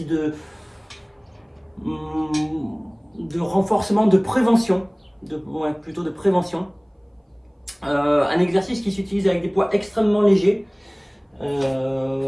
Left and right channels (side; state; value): both; identical; correlation 1.00